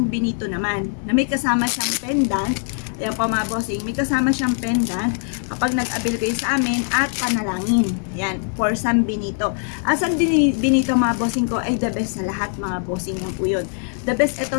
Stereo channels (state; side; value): silent; right; 55 dB below the other